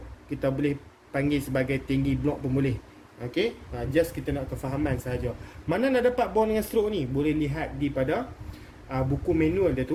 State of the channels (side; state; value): both; identical; correlation 1.00